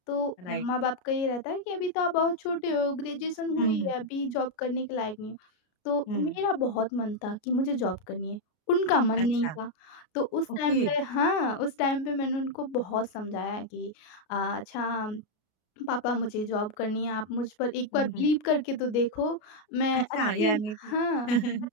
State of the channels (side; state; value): right; late; 33 ms